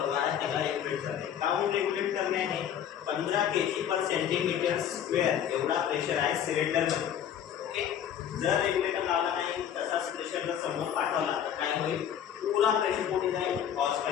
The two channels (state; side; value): quieter; right; 9.4 dB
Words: आहे त्याला रेग्युलेट करणे. काऊन रेग्युलेट करणे आहे? 15 kg/cm² एवढा प्रेशर आहे सिलेंडरमध्ये. ओके, जर रेग्युलेटर लावला नाही तसाच प्रेशर जर समोर पाठवला तर काय होईल? पुरा प्रेशर कुठे जाईल? हॉस